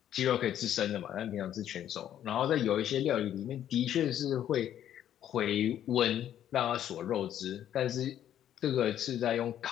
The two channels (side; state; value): right; quieter; 10.8 dB